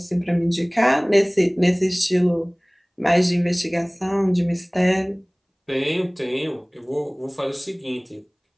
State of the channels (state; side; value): identical; both; correlation 1.00